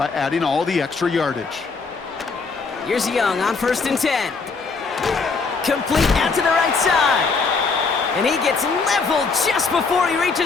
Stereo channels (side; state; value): right; quieter; 4.6 dB